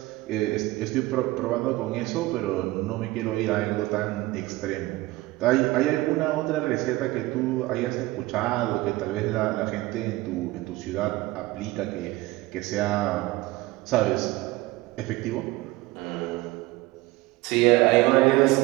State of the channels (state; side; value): quieter; left; 19.3 dB